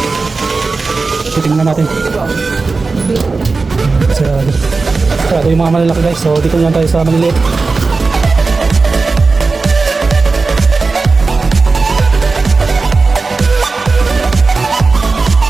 Titingnan natin. Sarado yung mga malalaki guys, so dito naman tayo sa maliliit.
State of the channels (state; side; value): quieter; left; 4.0 dB